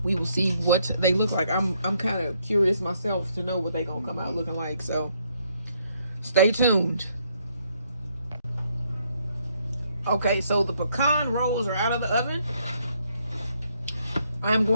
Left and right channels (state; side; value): inverted; both; correlation -0.71